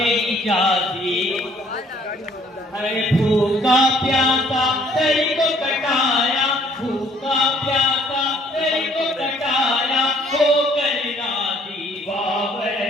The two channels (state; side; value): normal; both; correlation 0.61